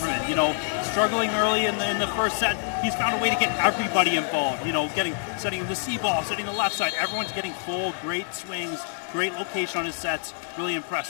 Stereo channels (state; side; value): silent; right; digital silence